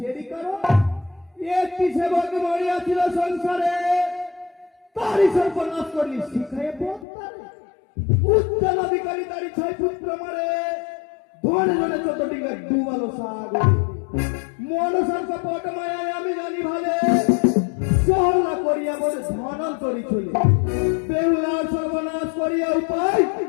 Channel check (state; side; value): drops out; right; at 7.1 s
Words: করো। একটি সেবক মরিয়াছিল সংসারে, তারই সর্বনাশ করলি শিখায় পদ্মারে। উচ্চালাধিকারী তারই 6 পুত্র মারে, ধনে ধনে 14 ডিঙ্গা ডুবালো সাগরে। মনসার কপট মায়ায় আমি জানি ভালে, সহলা করিয়া বলে ধনন্তরী চলে। বেহুলার সর্বনাশ করিয়া উপায়,